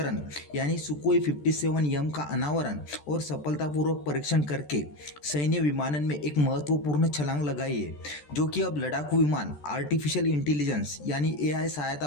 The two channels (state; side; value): late; right; 14 ms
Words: यानी सुकोई 57M का अनावरण और सफलतापूर्वक परीक्षण करके सैन्य विमानन में एक महत्वपूर्ण छलांग लगाई है, जो कि अब लड़ाकू विमान आर्टिफिशियल इंटेलिजेंस यानी AI सहायता